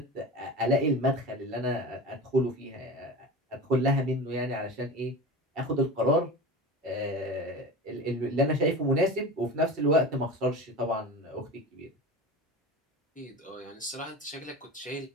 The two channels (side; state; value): both; normal; correlation 0.31